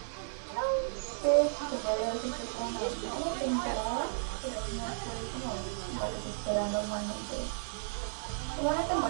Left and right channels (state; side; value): silent; left; digital silence